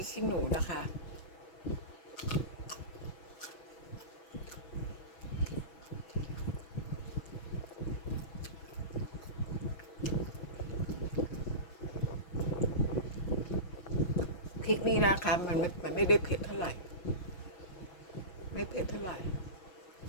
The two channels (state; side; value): late; right; 6.1 ms